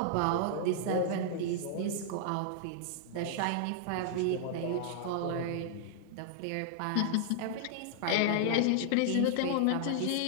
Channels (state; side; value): different; both; correlation -0.01